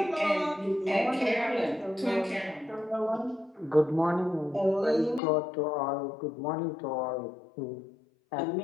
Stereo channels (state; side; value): drops out; right; at 5.2 s